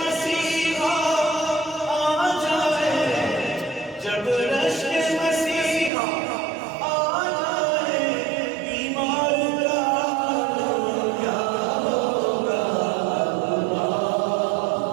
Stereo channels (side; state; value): left; drops out; at 5.9 s